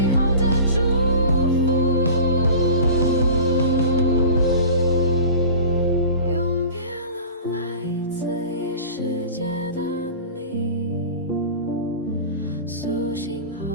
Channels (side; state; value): both; inverted; correlation -0.38